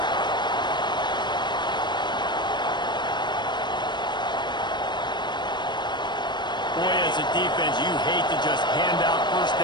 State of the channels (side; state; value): right; late; 0.22 ms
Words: Boy, as a defense, you hate to just hand out first